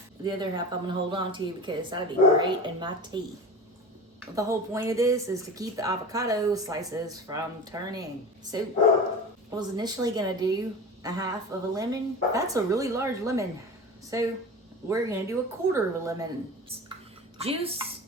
The other half I'm gonna hold on to because that'd be great in my tea. The whole point of this is to keep the avocado slices from turning. So I was initially gonna do a half of a lemon. That's a really large lemon. So we're gonna do a quarter of a lemon. Juice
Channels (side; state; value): both; normal; correlation 0.32